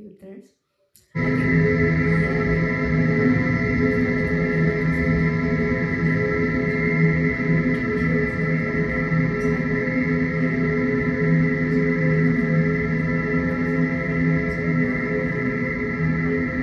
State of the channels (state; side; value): identical; both; correlation 1.00